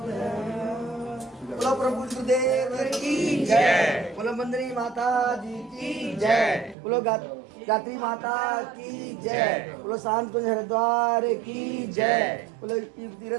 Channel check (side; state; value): left; drops out; at 6.8 s